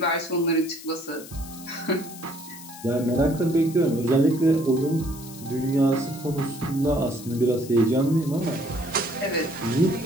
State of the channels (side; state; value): left; noise; hiss, 16 dB below the sound